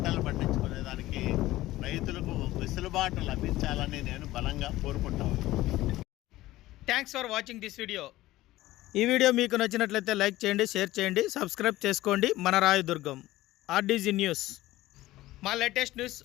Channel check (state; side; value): quieter; right; 16.6 dB